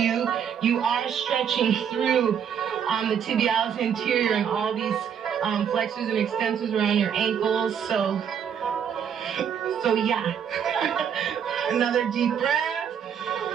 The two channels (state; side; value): quieter; left; 8.1 dB